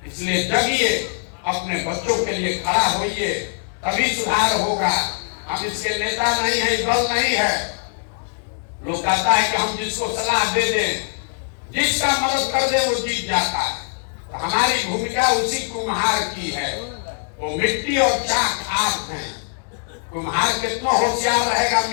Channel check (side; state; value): right; silent; digital silence